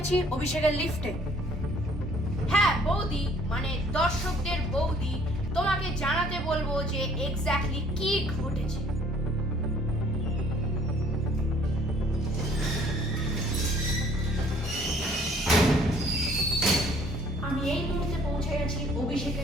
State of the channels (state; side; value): normal; both; correlation 0.58